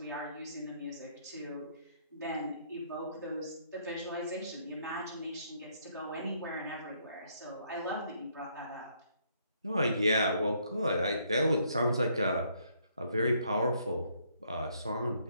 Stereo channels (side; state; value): both; inverted; correlation -0.69